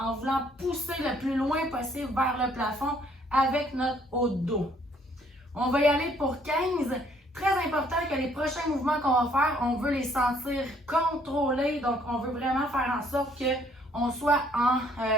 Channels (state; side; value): normal; both; correlation 0.64